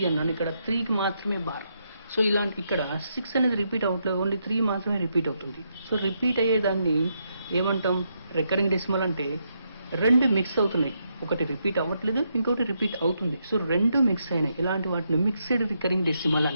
అన్నాను. ఇక్కడ 3కి మాత్రమే బార్. సో ఇలాంటి ఇక్కడ 6 అనేది రిపీట్ అవ్వట్లేదు, ఓన్లీ 3 మాత్రమే రిపీట్ అవుతుంది. సో రిపీట్ అయ్యేదాన్ని ఏమంటాం? Recurring decimal. అంటే రెండు మిక్స్ అవుతున్నాయి, ఒకటి రిపీట్ అవ్వట్లేదు, ఇంకొకటి రిపీట్ అవుతుంది. సో రెండు మిక్స్ అయినాయి, ఇలాంటి వాటిని మిక్స్డ్ రికరింగ్ డెసిమల్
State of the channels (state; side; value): inverted; both; correlation -0.79